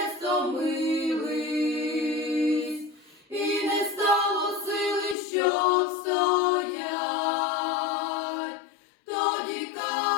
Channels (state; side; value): drops out; right; at 5.2 s